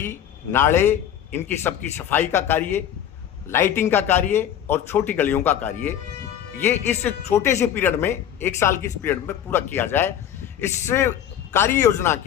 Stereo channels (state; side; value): quieter; right; 10.0 dB